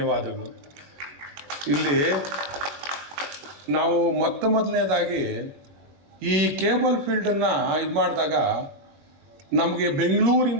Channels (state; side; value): late; left; 21 ms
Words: ಇಲ್ಲಿ ನಾವು ಮೊದಲನೇದಾಗಿ ಈ ಕೇಬಲ್ ಫೀಲ್ಡನ್ನು ಇದು ಮಾಡಿದಾಗ ನಮಗೆ